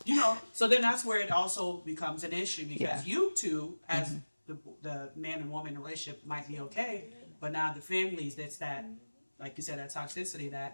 You know, so then that's where it also becomes an issue because you two, as the man and woman relationship, might be okay, but now the families, that's that, like you said, that toxicity, that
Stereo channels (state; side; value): inverted; both; correlation -1.00